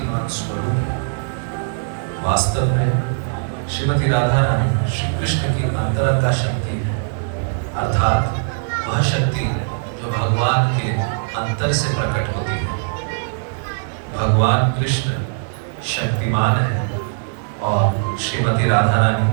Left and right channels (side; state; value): left; silent; 66 dB below the other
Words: स्वरूप है। वास्तव में श्रीमती राधा रानी श्री कृष्ण की अंतरंगा शक्ति है, अर्थात वह शक्ति जो भगवान के अंतर से प्रकट होती है। भगवान कृष्ण शक्तिमान है और श्रीमती राधा रानी